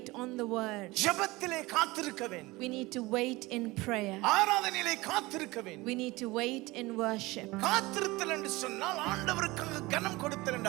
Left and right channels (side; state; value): left; quieter; 21.4 dB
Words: on the word. ஜெபத்திலே காத்திருக்க வேண்டும். We need to wait in prayer. ஆராதனையிலே காத்திருக்க வேண்டும். We need to wait in worship. காத்திருத்தல் என்று சொன்னால் ஆண்டவருக்கு கனம் கொடுத்தல்